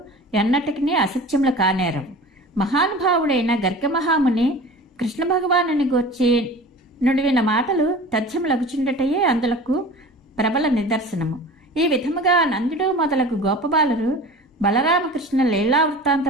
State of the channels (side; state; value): both; normal; correlation 0.39